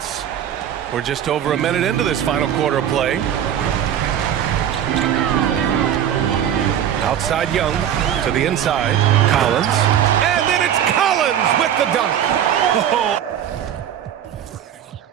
We're just over a minute into this final quarter of play. Outside Young to the inside. Collins. And then it's Collins with the dunk.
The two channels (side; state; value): left; quieter; 9.9 dB